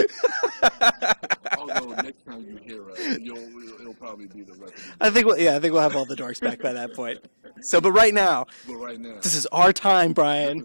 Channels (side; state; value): both; inverted; correlation -1.00